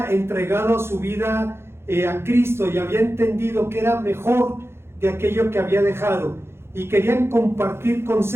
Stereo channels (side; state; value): left; late; 0.12 ms